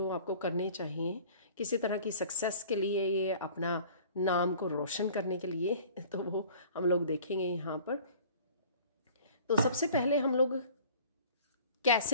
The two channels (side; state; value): both; inverted; correlation -0.48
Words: आपको करने चाहिए किसी तरह की सक्सेस के लिए, ये अपना नाम को रोशन करने के लिए, तो वो हम लोग देखेंगे यहाँ पर। तो सबसे पहले हम लोग